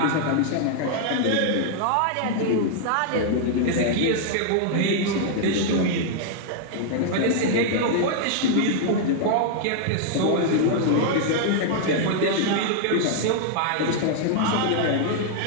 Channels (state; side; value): different; both; correlation -0.01